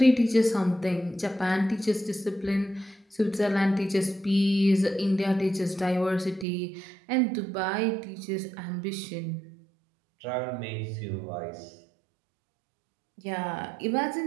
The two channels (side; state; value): left; drops out; at 6.5 s